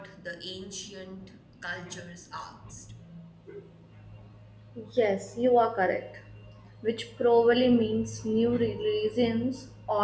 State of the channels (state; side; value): identical; both; correlation 1.00